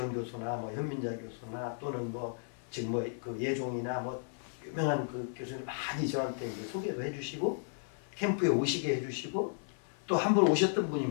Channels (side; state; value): right; silent; 55 dB below the other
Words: 교수나 뭐 현민자 교수나 또는 뭐 지금 뭐 그 예종이나 뭐 유명한 그 교수님 많이 저한테 이제 소개도 해주시고 캠프에 오시게 해주시고 또 한 번 오셨던 분이